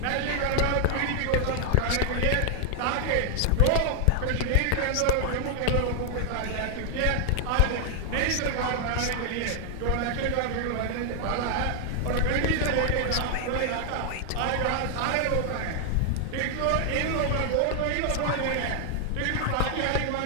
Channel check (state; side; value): different; both; correlation 0.00